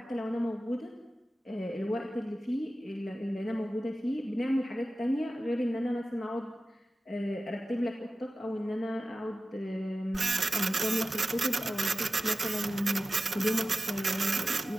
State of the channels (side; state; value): both; normal; correlation 0.94